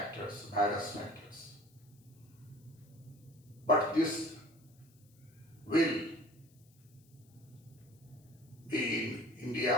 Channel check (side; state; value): left; noise; hiss, 30 dB below the sound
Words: virus factors. But this will be in India